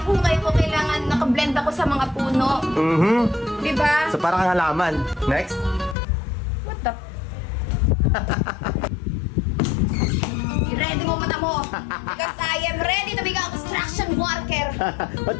ko, kailangan nakablend ako sa mga puno. Diba? So parang kang halaman. Next? What the? I-ready mo mata mo. Because I am ready to become a construction worker.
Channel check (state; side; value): drops out; right; at 6.0 s